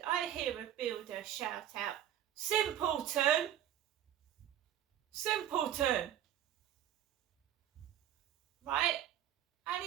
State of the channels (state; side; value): quieter; left; 11.2 dB